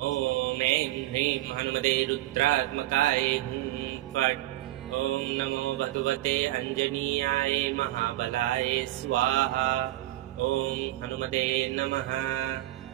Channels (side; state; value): left; quieter; 16.0 dB